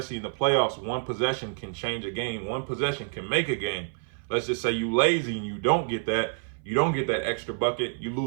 in the playoffs, one possession can change a game. One possession can make a game. Let's just say you lazy and you don't get that extra bucket, you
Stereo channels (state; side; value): silent; left; 57 dB below the other